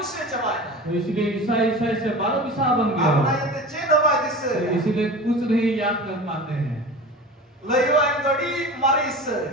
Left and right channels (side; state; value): both; normal; correlation 0.34